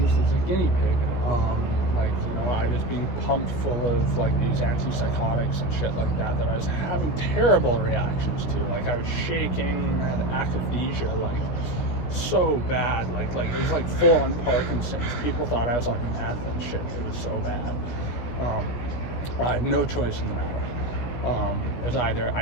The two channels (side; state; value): right; late; 16 ms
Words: as a guinea pig. I was being pumped full of these antipsychotics and shit like that I was having terrible reactions to. I was shaking, had akathisia, so bad. It was full on Parkinson's. People thought I was on meth and shit. It was so bad. I had no choice in the matter. It was either